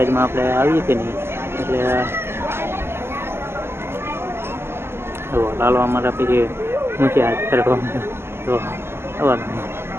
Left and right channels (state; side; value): late; left; 0.12 ms